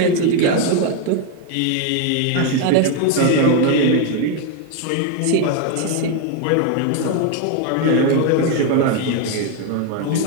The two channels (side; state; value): both; different; correlation 0.01